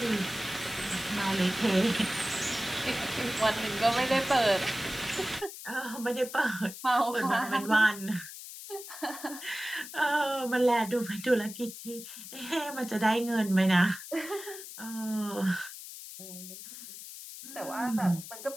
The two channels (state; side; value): noise; left; hiss, 12 dB below the sound